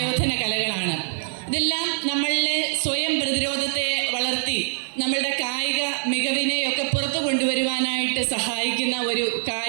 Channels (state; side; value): silent; left; digital silence